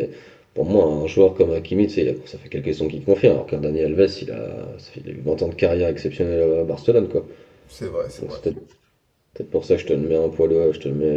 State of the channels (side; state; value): both; identical; correlation 1.00